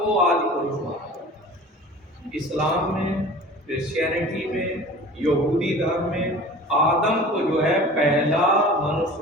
आदि पुरुष माना जाता है। इस्लाम में, क्रिश्चियनिटी में, यहूदी धर्म में आदम को जो है पहला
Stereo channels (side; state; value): both; normal; correlation 0.40